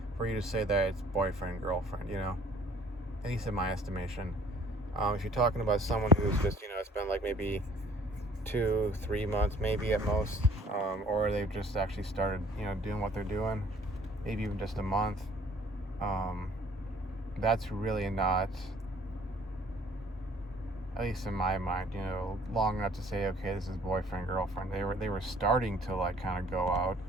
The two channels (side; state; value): both; normal; correlation 0.56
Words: you to say that it's boyfriend girlfriend, you know, at least in my estimation. If you're talking about someone who's just, you know, it's been like maybe 2-3 months maybe at most, or they've just actually started, you know, doing what they're doing, maybe even just a month, that's really not, at least in my mind, you know, long enough to say, okay, this is boyfriend girlfriend. They were starting to like kind of go out,